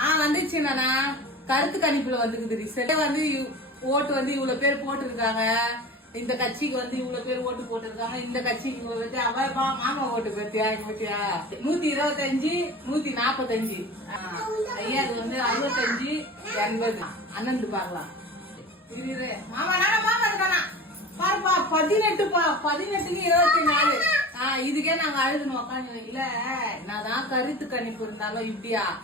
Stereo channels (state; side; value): normal; both; correlation 0.35